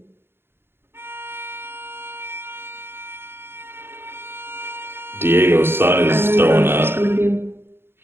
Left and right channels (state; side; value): late; left; 0.11 ms